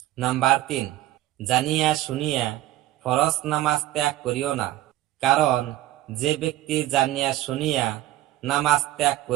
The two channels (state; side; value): quieter; left; 14.8 dB